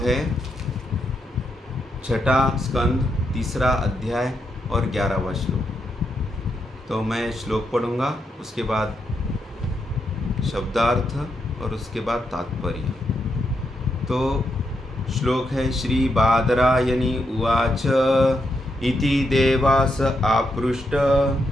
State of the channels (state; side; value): normal; both; correlation 0.81